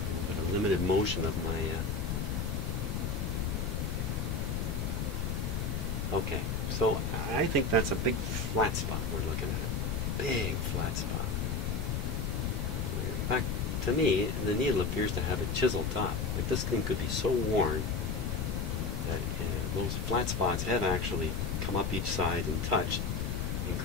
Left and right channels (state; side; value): noise; left; rumble, 1 dB below the sound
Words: A limited motion of my okay, so I think that's a big flat spot we're looking at. Big flat spot. Back to me, the needle appears to have a chiseled top. Like this thing could be so worn that those flat spots have actually come up each side and touched and